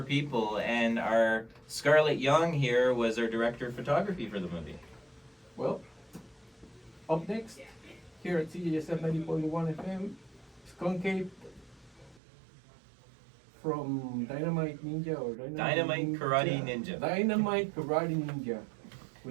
people, and our Scarlett Young here was our director of photography for the movie. Well, up next, here at CJSF 90.1 FM, Skunkade from Dynamite Ninja or Dynamite Karate Ninja. Dynamite Karate Ninja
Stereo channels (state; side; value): drops out; left; at 12.2 s